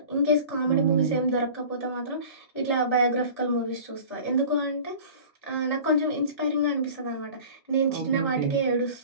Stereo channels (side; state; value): both; inverted; correlation -0.41